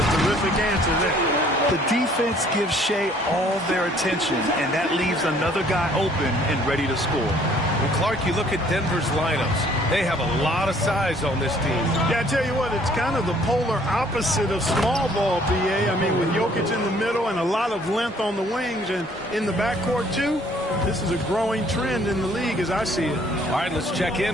terrific answer there. The defense gives Shea all their attention, and that leaves another guy open and ready to score. Well, Clark, you look at Denver's lineups. They have a lot of size on this team. Yeah, I tell you what, it's kind of the polar opposite of small ball, BA. I mean, with Jokic in the middle and a lot of length on the wings and in the backcourt, too, this is a growing trend in the league as I see it. All right, let's check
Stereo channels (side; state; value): both; normal; correlation 0.60